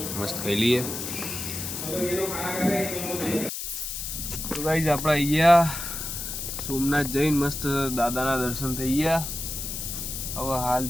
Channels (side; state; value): left; noise; hiss, 5 dB below the sound